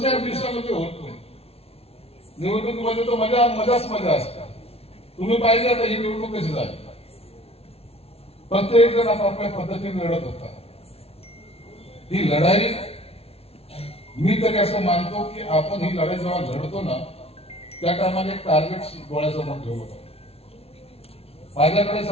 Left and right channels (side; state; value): right; late; 0.29 ms